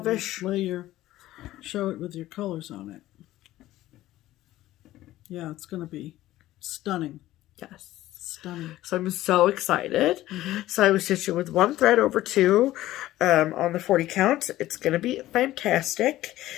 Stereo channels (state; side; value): quieter; right; 15.3 dB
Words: Show it with your colors on it. Yeah, it's going to be stunning. Yes. Stunning. So I'm so excited. So I was stitching with one thread over 2 on the 40 count. It's going to be fantastic.